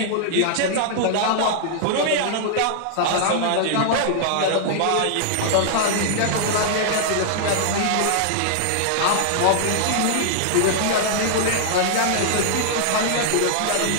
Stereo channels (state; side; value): different; both; correlation -0.01